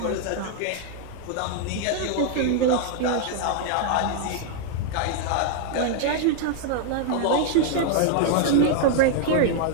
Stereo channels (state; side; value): different; both; correlation 0.00